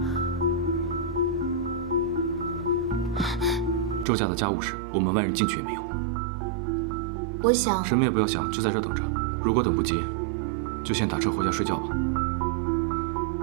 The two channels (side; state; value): left; drops out; at 4.0 s